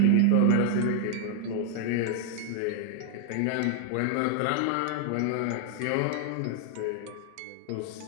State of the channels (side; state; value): both; different; correlation 0.00